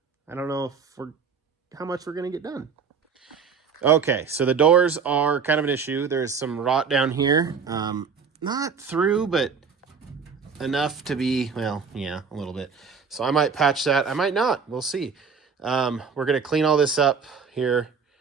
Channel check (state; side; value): quieter; left; 5.8 dB